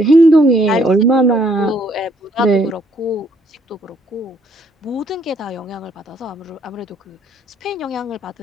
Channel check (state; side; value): normal; both; correlation 0.67